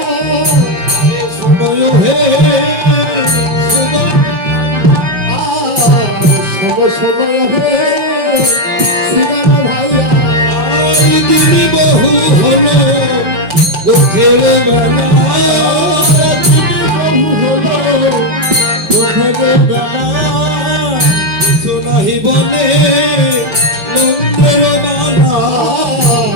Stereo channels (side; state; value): left; late; 5.2 ms